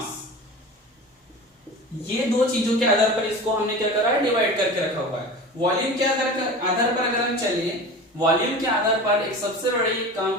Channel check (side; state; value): both; normal; correlation 0.34